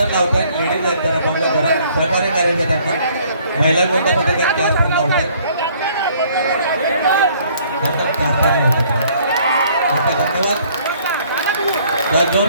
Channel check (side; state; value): both; inverted; correlation -0.60